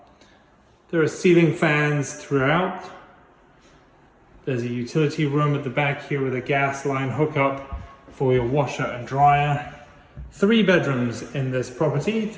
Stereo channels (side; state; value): both; identical; correlation 1.00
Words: There are ceiling fans throughout. There's a utility room at the back here with a gas line hookup for your washer and dryer. 3 bedrooms in this property,